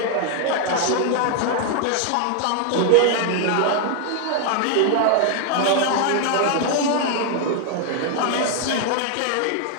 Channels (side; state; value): both; different; correlation 0.00